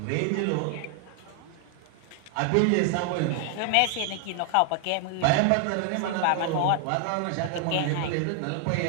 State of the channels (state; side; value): different; both; correlation 0.00